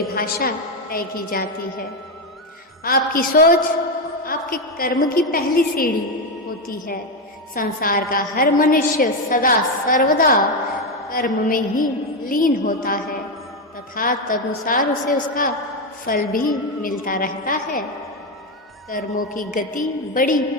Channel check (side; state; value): both; normal; correlation 0.08